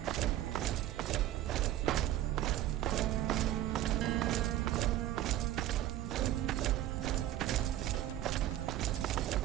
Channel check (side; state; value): left; quieter; 13.3 dB